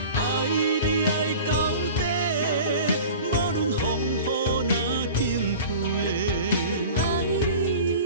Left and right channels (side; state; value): both; inverted; correlation -0.39